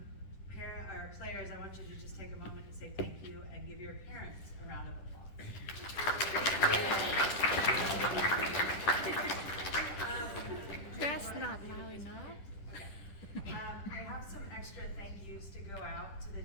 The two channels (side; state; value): right; late; 10 ms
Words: Our players, I want you to just take a moment to say thank you and give your parents a round of applause. That's not loud enough. I have some extra thank yous to go out to the